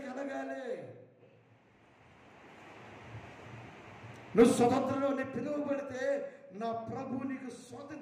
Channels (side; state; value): both; identical; correlation 1.00